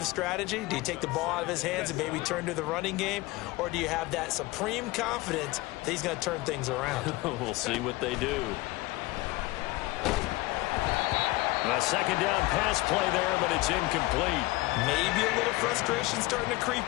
strategy? Do you take the ball out of his hands and maybe turn to the running game? Or do you have that supreme confidence that he's going to turn things around? We'll see what they do. A second down pass play there, but it's incomplete. Maybe a little frustration starting to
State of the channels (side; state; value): right; quieter; 20.4 dB